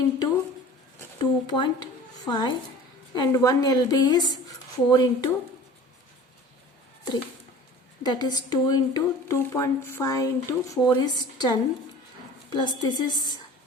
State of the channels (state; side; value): normal; both; correlation 0.42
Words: 2.5 and 1 LB is 4 into 3. That is 2 into 2.5 into 4 is 10 plus this is